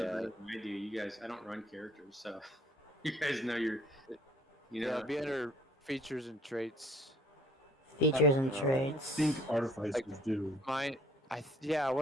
Yeah. better than I do. You guys, I don't run characters, so you guys know you know. Yeah, be under features and traits. Features and I traits. think artificers do. I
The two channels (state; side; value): normal; both; correlation 0.58